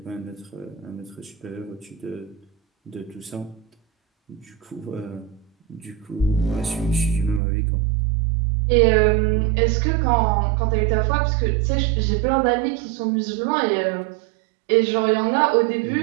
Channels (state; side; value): drops out; left; at 7.4 s